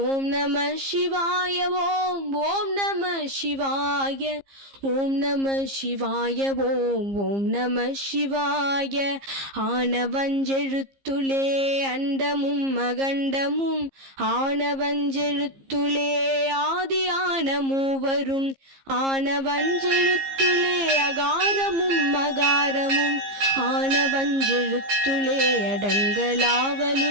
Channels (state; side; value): late; left; 15 ms